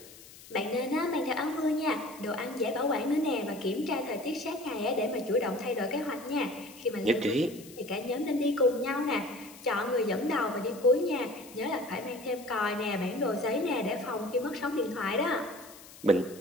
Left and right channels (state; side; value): noise; left; hiss, 19 dB below the sound